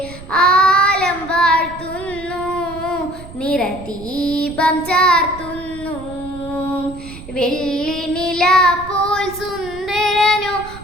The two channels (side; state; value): right; noise; rumble, 16 dB below the sound